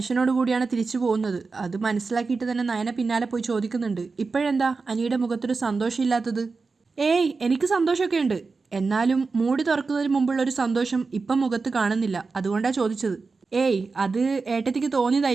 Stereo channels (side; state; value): left; quieter; 4.3 dB